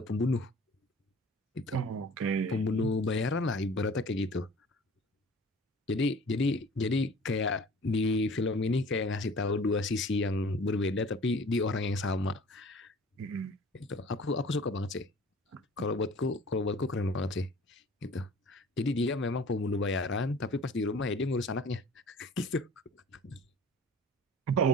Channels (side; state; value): both; normal; correlation 0.46